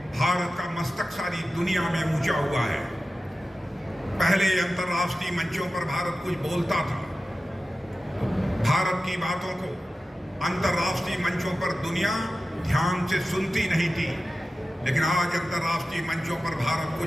भारत का मस्तक सारी दुनिया में ऊंचा हुआ है। पहले अंतर्राष्ट्रीय मंचों पर भारत कुछ बोलता था, भारत की बातों को अंतर्राष्ट्रीय मंचों पर दुनिया ध्यान से सुनती नहीं थी। लेकिन आज अंतर्राष्ट्रीय मंचों पर भारत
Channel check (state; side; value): normal; both; correlation 0.94